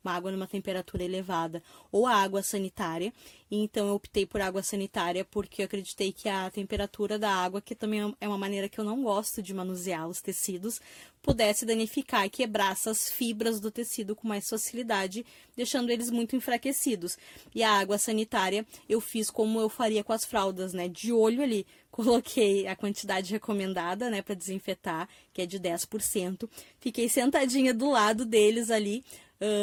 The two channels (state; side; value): identical; both; correlation 1.00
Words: uma água numa temperatura elevada, ou a água sanitária. Então eu optei por água sanitária porque eu acreditei que a temperatura da água, que também é uma maneira que eu não gosto de manusear os tecidos, pudesse danificar e quebrar essas fibras do tecido com mais facilidade, deixando eles muito enfraquecidos. E a água sanitária eu fiz como eu faria com as fraldas, né? De olho ali, coloquei a quantidade recomendada, né, para desinfetar, que é de 10%. Fiquei sentadinha do lado deles ali